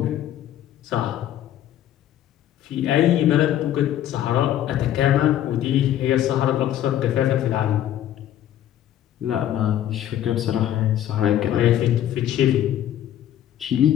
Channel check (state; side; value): quieter; right; 11.6 dB